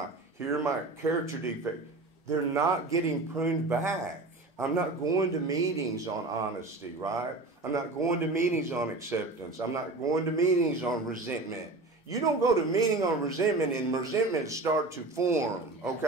character defect. They're not getting pruned back. I'm not going to meetings on honesty, right? I'm not going to meetings on acceptance. I'm not going to meetings on resentment. You don't go to meeting on resentment and resentment start to form,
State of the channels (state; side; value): quieter; left; 3.1 dB